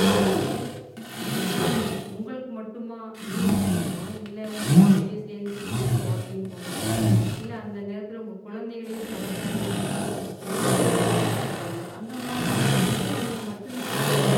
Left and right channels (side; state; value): both; identical; correlation 1.00